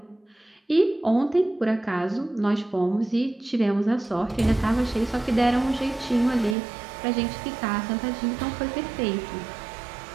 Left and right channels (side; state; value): left; drops out; at 6.6 s